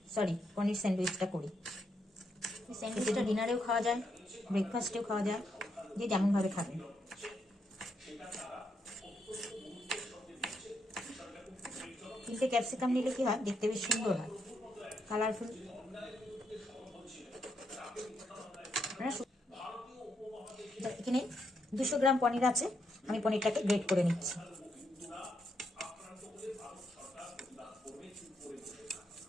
স্যান্ডউইচটা করি। স্যান্ডউইচটা ডিনারেও খাওয়া যায়, ব্রেকফাস্টেও খাওয়া যায়, যে যেমনভাবে খাবেন। তিনটে ক্যাপসিকাম নিলে কি হয়, দেখতে বেশ সুন্দর হয়, কালারফুল। এখানে 200 গ্রাম পনির আছে, আমি পনিরটাকে গ্রেট করে নিচ্ছি।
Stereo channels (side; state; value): both; normal; correlation 0.79